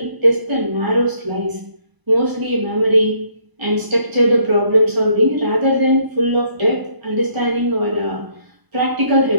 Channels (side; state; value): left; late; 1.0 ms